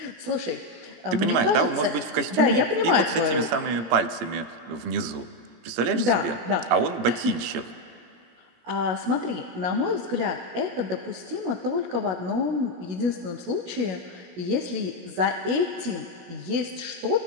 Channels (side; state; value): left; late; 17 ms